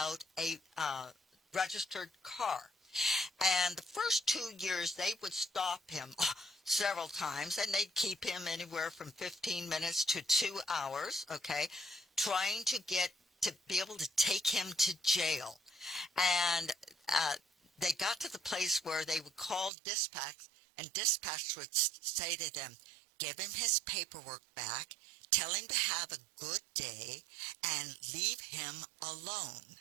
a registered car. And the first 2 years, they would stop him several times, and they'd keep him anywhere from 15 minutes to 2 hours, okay, trying to be able to take him to jail. And they got to the place where they would call dispatch, and dispatch would say to them, give him his paperwork back, tell him to have a good day, and leave him alone.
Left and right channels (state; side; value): drops out; left; at 19.7 s